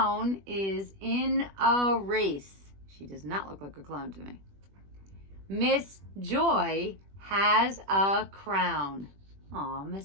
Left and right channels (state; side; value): late; left; 21 ms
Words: is in a race. She does not look like a clown to me. Miss Joy has a crown. Aw,